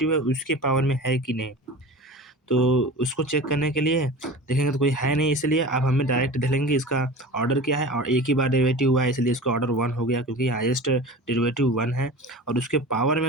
है उसके पावर में है कि नहीं। तो उसको चेक करने के लिए देखेंगे तो कोई है नहीं, इसलिए अब हमें डायरेक्ट देख लेंगे इसका ऑर्डर क्या है, और एक ही बार डेरिवेटिव हुआ है इसलिए इसका ऑर्डर 1 हो गया, क्योंकि हाईएस्ट डेरिवेटिव 1 है और उसके पावर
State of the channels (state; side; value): normal; both; correlation 0.35